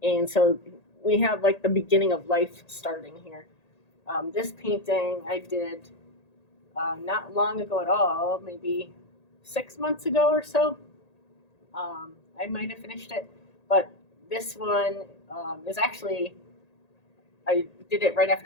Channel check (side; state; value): right; late; 1.8 ms